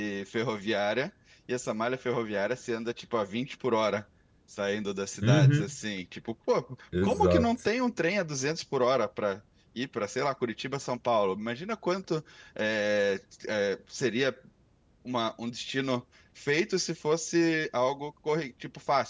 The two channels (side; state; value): both; identical; correlation 1.00